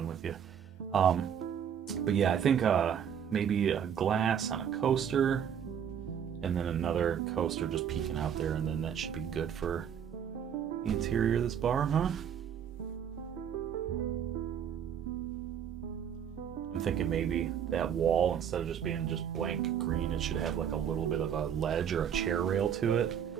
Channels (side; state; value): left; quieter; 8.5 dB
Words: with you. But yeah, I think maybe a glass on a coaster, and then another coaster just peeking out there, and then that should be good for the interior of this bar, huh? I'm thinking maybe that wall, instead of just being just blank green, it should have like a little bit of a ledge or a chair rail to it.